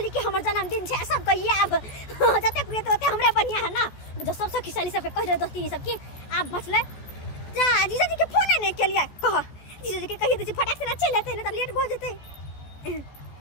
कि हमर जन्मदिन छे सब कहिए अब जते कुए तो हमरे बढ़िया है ना जो सब खिसाली सबके कह दे दोस्ती सब की आप बचले जा जीजा जी के फोन नहीं के लिए कह जीजा जी के कहिए दे फटाक से ना चल लेते ना तो लेट हो जेते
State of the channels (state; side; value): late; right; 14 ms